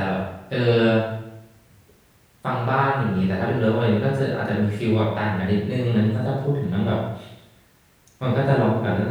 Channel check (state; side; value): identical; both; correlation 1.00